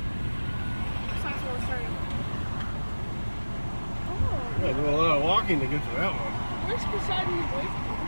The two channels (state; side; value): inverted; both; correlation -1.00